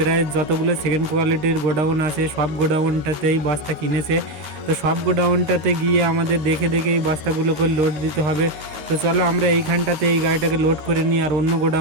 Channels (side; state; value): left; late; 13 ms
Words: যতগুলো সেকেন্ড কোয়ালিটির গোডাউন আছে সব গোডাউনটাতেই বস্তা কিনেছে। তো সব গোডাউনটাতে গিয়ে আমাদের দেখে দেখে এই বস্তাগুলোকে লোড দিতে হবে। তো চলো আমরা এইখানটাতে এই গাড়িটাকে লোড করে নিই, আর অন্য